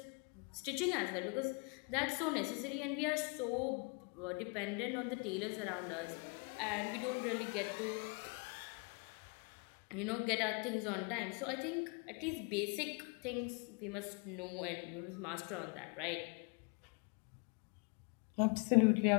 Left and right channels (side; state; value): right; quieter; 34.6 dB